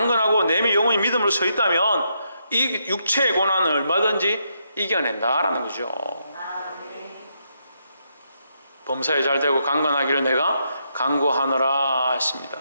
내 영혼이 믿음으로 서 있다면 이 육체의 고난을 얼마든지 이겨낸다라는 거죠. 범사에 잘 되고 강건하기를 내가 간구하노라 했습니다.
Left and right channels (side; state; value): both; inverted; correlation -0.79